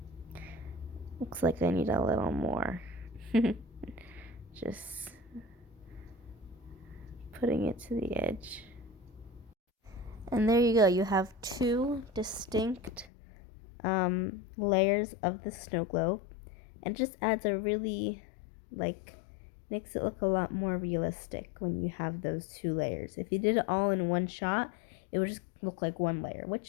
Looks like I need a little more. Just putting it to the edge. And there you go. You have two distinct layers of the snow globe, and just adds a really, makes it look a lot more realistic when you have those two layers. If you did it all in one shot, it would just look like one layer,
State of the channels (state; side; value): drops out; right; at 13.1 s